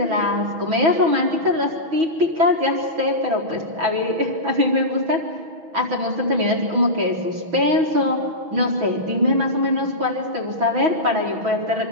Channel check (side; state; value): left; late; 6.2 ms